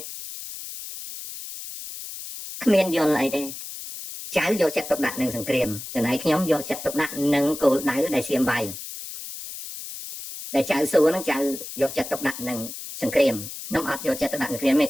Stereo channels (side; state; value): left; noise; hiss, 10 dB below the sound